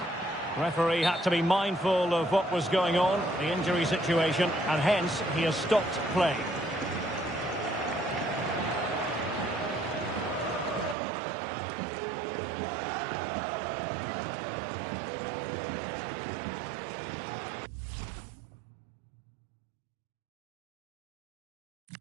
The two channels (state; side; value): drops out; left; at 11.0 s